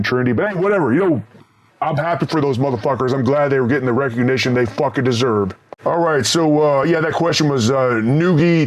trendy. But hey, whatever. You know, I'm happy for those motherfuckers. I'm glad they were getting the recognition they fucking deserve. All right, so yeah, that question was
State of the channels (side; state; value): both; identical; correlation 1.00